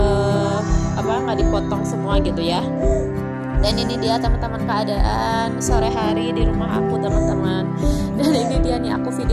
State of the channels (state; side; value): identical; both; correlation 1.00